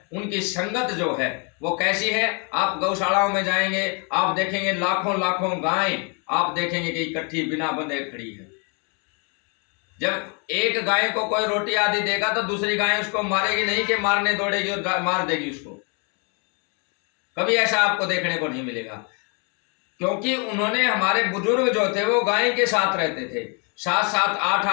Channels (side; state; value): right; quieter; 35.6 dB